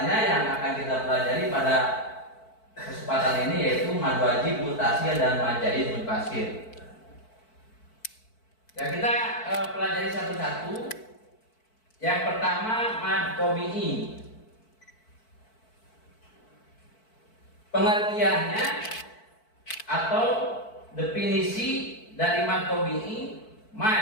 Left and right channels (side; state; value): right; late; 4.5 ms